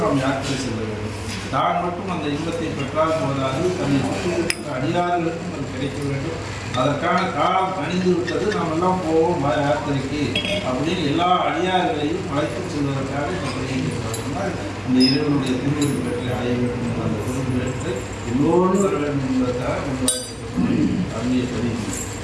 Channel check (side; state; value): both; identical; correlation 1.00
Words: நாம் யாத்திரை செல்ல வேண்டும். தான் மட்டும் அந்த இன்பத்தை பெற்றால் போதாது, தன்னை சுற்றி இருக்கிற அடியார்களுக்கும் அது கிடைக்க வேண்டும். அதற்கான காலம் கணிந்து விட்டது. நாம் எல்லாம் போவோம் யாத்திரைக்கு அப்படின்னு எல்லா அடியார்களையும் அழைத்து செல்வதற்காக இந்த பதியை சொன்னால், அந்த இறைவனுடைய திருவடி பெற்றை அடைய வேண்டும் என்ற அந்த பொருள் பெற்று எல்லோரும் வர வேண்டும் என்பதற்காக கொண்டு அருமையை பதிவு.